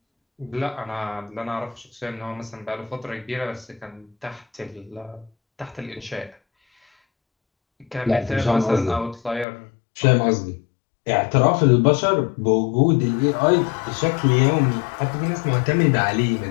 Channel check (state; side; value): drops out; right; at 9.5 s